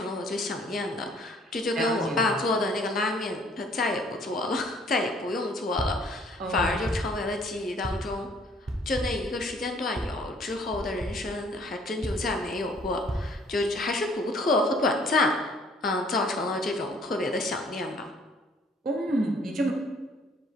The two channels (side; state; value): both; normal; correlation 0.59